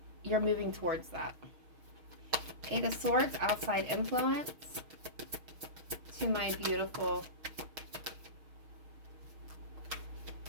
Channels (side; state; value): left; late; 6.4 ms